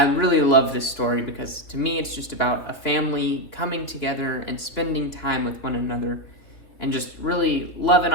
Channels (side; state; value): right; late; 3.1 ms